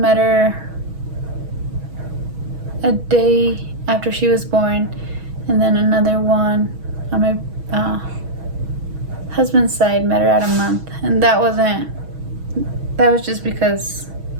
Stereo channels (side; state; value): left; late; 6.2 ms